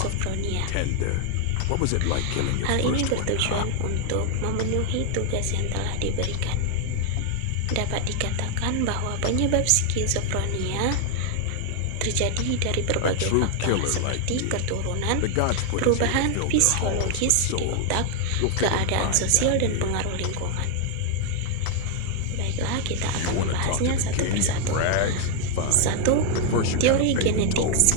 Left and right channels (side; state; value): both; different; correlation 0.00